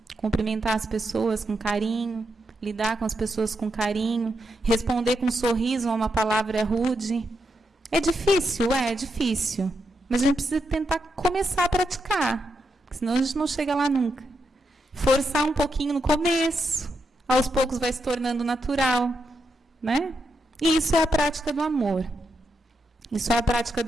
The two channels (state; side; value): normal; both; correlation 0.84